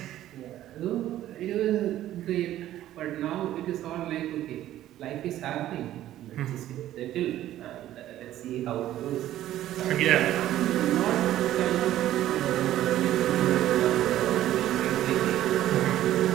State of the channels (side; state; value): left; quieter; 13.2 dB